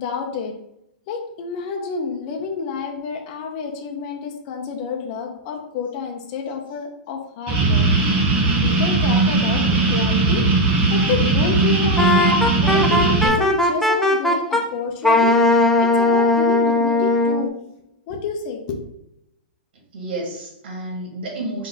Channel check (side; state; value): both; normal; correlation 0.10